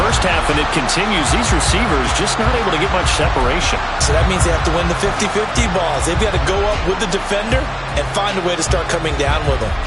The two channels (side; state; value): both; identical; correlation 1.00